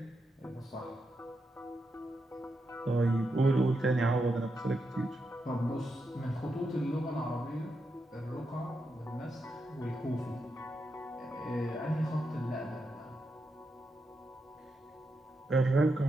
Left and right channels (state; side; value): normal; both; correlation 0.85